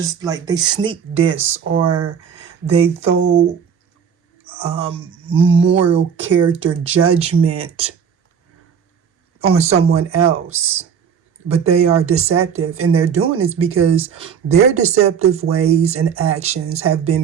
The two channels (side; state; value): left; quieter; 7.3 dB